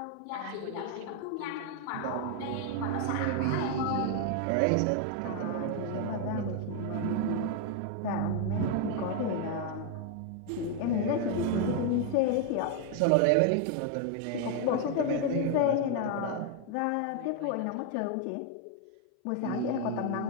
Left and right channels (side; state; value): both; different; correlation 0.01